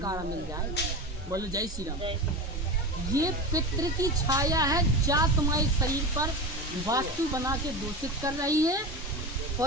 मिल जाए। बोलो जय श्री राम। ये पितृ की छाया है, जा तुम्हारे शरीर पर वास्तु बना के दूषित कर रही है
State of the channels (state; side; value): normal; both; correlation 0.26